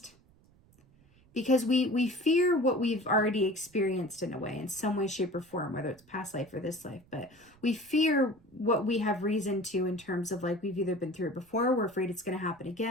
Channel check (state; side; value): noise; right; rumble, 29 dB below the sound